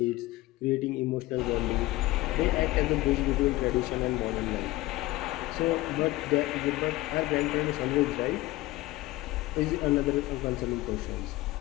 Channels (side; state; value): right; quieter; 18.5 dB